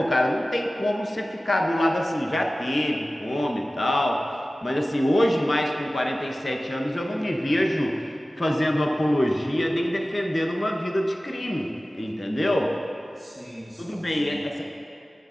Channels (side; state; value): both; normal; correlation 0.97